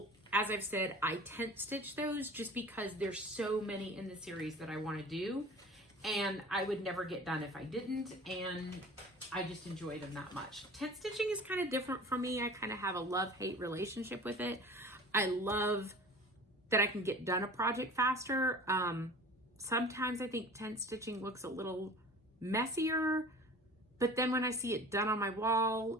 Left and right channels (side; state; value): both; normal; correlation 0.41